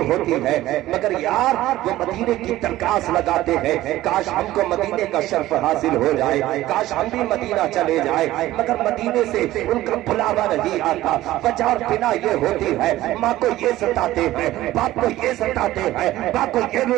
ہوتی ہے، مگر یار وہ مدینے کی درخواست لگاتے ہیں کاش ہم کو مدینے کا شرف حاصل ہو جائے، کاش ہم بھی مدینہ چلے جائے، مگر مدینے سے ان کا بلاوا نہیں آتا۔ وجہ اور بنا یہ ہوتی ہے ماں کو یہ ستاتے ہیں، باپ کو یہ ستاتے ہیں، باپ کو یہ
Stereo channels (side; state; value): left; quieter; 15.7 dB